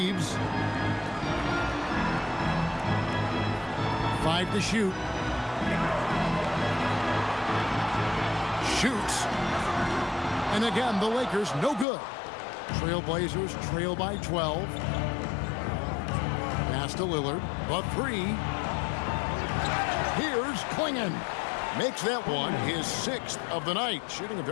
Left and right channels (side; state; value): right; drops out; at 11.9 s